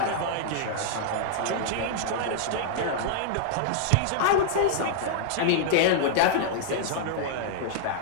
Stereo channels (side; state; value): both; different; correlation -0.01